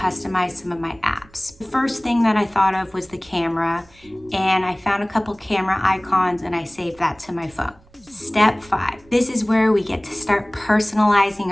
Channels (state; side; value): noise; right; rumble, 28 dB below the sound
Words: some of my apps. The first thing that I thought of was the camera, and I found a couple camera icons and I saved that to my phone. Step 5. This is where we get to start personalizing